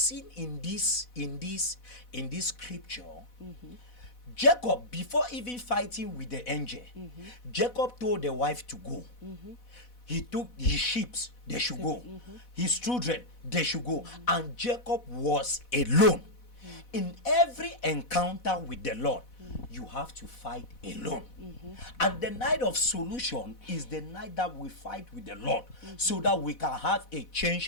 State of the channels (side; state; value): right; late; 4.1 ms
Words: in this scripture, Jacob, before even fighting with the angel, Jacob told the wife to go. He took his sheep, they should go. His children, they should go. And Jacob was alone. In every encounter with the Lord, you have to fight alone. And the night of solution is the night that we fight with the Lord, so that we can have a